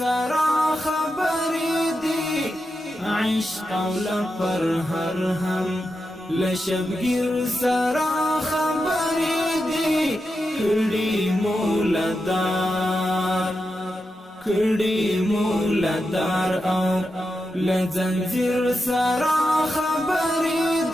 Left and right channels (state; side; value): normal; both; correlation 0.88